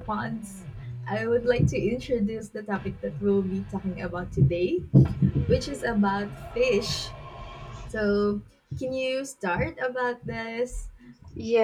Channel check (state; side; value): identical; both; correlation 1.00